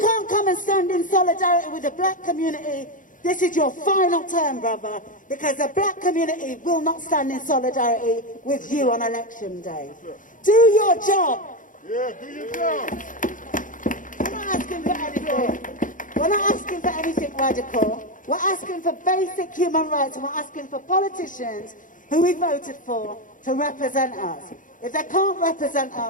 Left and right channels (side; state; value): right; late; 0.38 ms